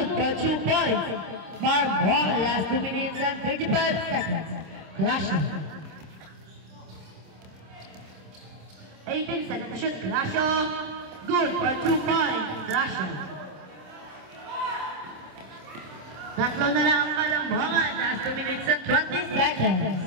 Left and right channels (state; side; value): late; left; 26 ms